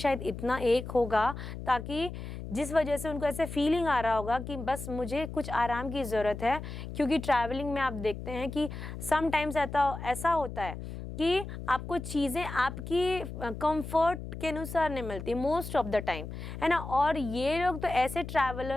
इतना एक होगा ताकि जिस वजह से उनको ऐसे फीलिंग आ रहा होगा कि बस मुझे कुछ आराम की ज़रूरत है। क्योंकि ट्रैवलिंग में आप देखते हैं कि समटाइम्स ऐसा होता है कि आपको चीज़ें आपकी कंफर्ट के अनुसार नहीं मिलती मोस्ट ऑफ द टाइम, है ना। और ये लोग तो ऐसे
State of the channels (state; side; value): noise; left; hum, 9 dB below the sound